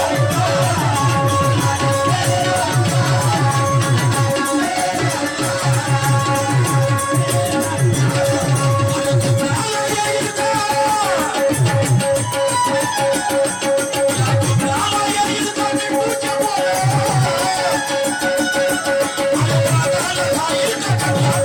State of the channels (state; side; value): identical; both; correlation 1.00